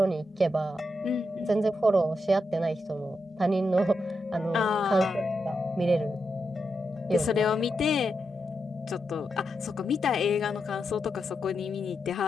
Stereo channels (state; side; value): normal; both; correlation 0.85